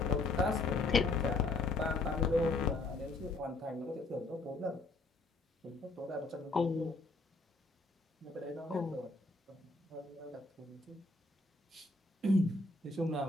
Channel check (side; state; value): right; quieter; 3.2 dB